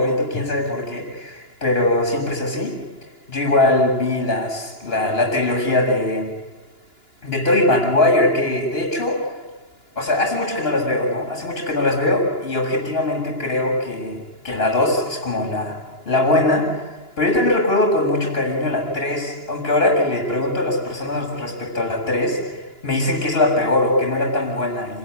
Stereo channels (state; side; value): late; right; 2.9 ms